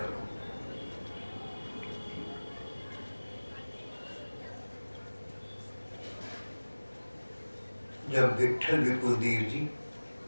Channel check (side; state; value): both; inverted; correlation -1.00